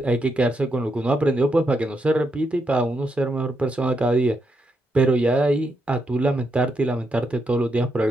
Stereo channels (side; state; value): both; normal; correlation 0.81